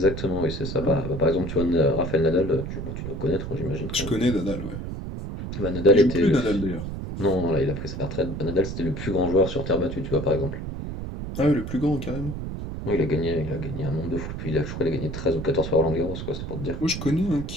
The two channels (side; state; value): right; noise; rumble, 6 dB below the sound